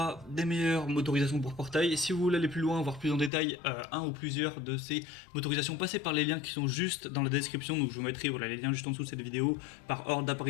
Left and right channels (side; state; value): right; drops out; at 3.3 s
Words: des meilleures motorisations pour portail. Si vous voulez aller plus loin, voir plus en détail un ou plusieurs de ces motorisations, passez par les liens qui sont juste dans la description. Donc je vous mettrai les liens juste en dessous de cette vidéo par ordre